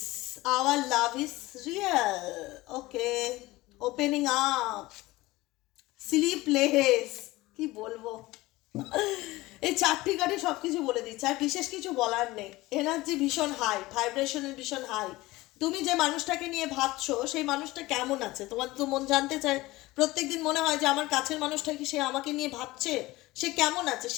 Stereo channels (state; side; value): quieter; right; 19.4 dB